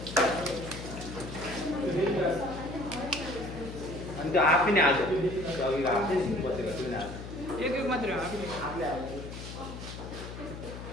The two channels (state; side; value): noise; left; hum, 10 dB below the sound